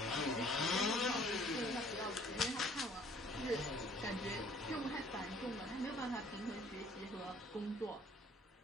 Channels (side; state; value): both; normal; correlation 0.57